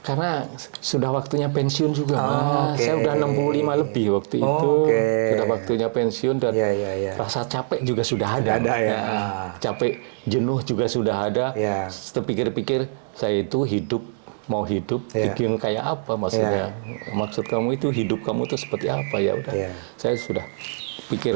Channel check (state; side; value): silent; left; digital silence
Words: sudah waktunya pensiun juga, Mas. Saya udah 65 lebih waktu itu. Sudah waktunya pensiun dan rasa capek juga sudah ada. Capek, jenuh juga sudah ada. Terpikir-pikir saya itu mau hidup, bikin kayak apa maksudnya? Maksud kamu itu hidup kamu itu seperti apa ya udah. Saya sudah